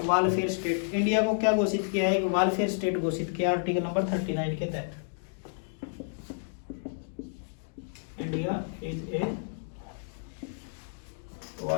welfare state. India को क्या घोषित किया है? एक वेलफेयर स्टेट घोषित किया आर्टिकल नंबर 39 के तहत। India is a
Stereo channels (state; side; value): silent; right; digital silence